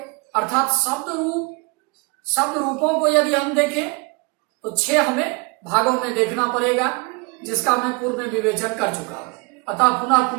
अर्थात शब्द रूपों को यदि हम देखें तो 6 हमें भागों में देखना पड़ेगा, जिसका मैं पूर्व में विवेचन कर चुका हूं, अतः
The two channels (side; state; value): left; quieter; 29.6 dB